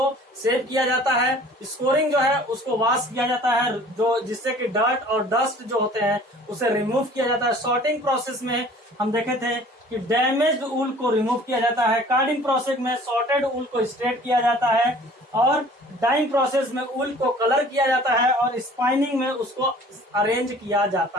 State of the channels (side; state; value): both; normal; correlation 0.49